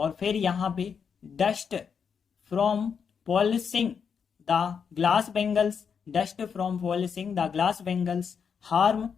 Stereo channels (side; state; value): right; quieter; 6.6 dB